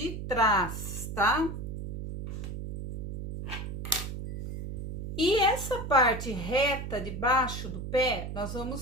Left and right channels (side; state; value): right; noise; hum, 6 dB below the sound